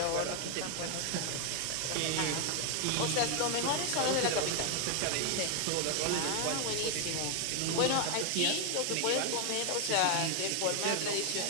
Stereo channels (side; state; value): both; different; correlation 0.01